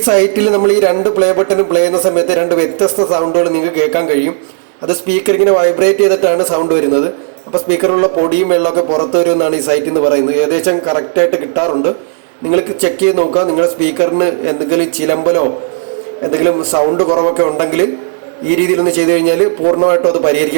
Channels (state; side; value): silent; left; digital silence